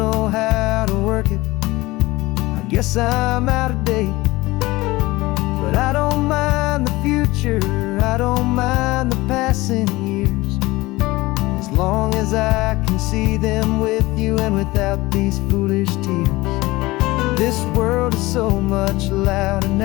how to work it, I guess I'm out of date. But I don't mind the future, I don't mind the passing years, as long as I can see them with you and without these foolish tears. This world is so much louder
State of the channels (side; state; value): right; quieter; 20.1 dB